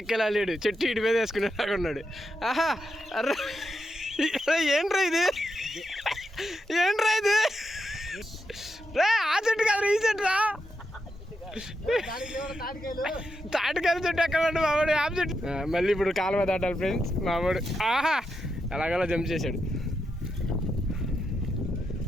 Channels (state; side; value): normal; both; correlation 0.85